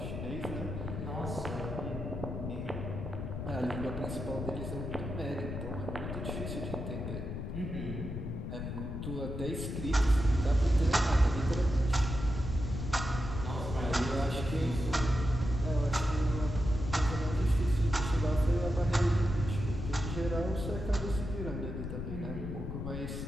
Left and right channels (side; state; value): left; noise; rumble, 5 dB below the sound